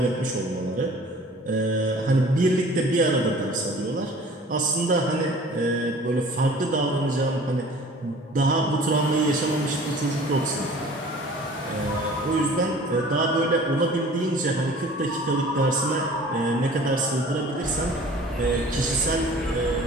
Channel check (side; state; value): both; normal; correlation 0.47